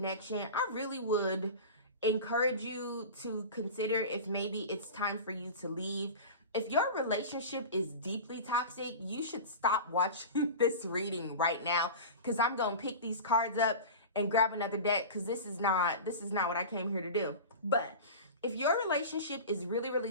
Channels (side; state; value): both; inverted; correlation -0.31